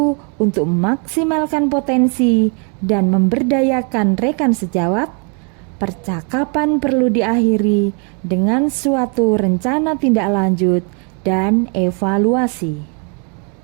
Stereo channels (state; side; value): quieter; left; 37.8 dB